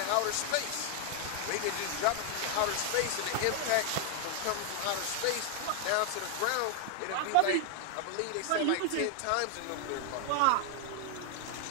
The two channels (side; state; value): both; different; correlation 0.00